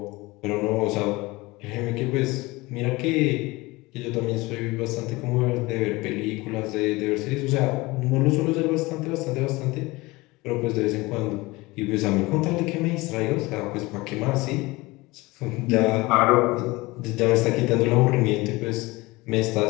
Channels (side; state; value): right; quieter; 22.0 dB